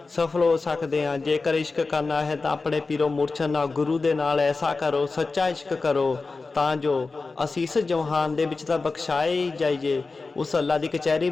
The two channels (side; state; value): right; quieter; 3.9 dB